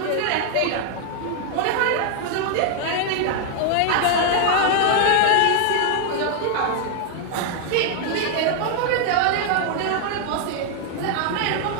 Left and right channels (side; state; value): both; different; correlation 0.00